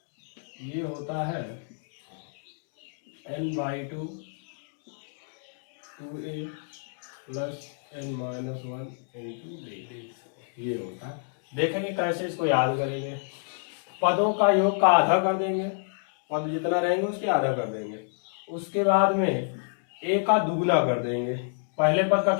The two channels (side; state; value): right; silent; digital silence